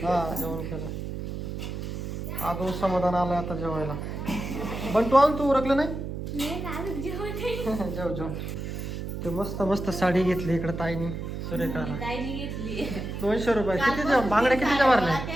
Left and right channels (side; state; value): right; noise; hum, 6 dB below the sound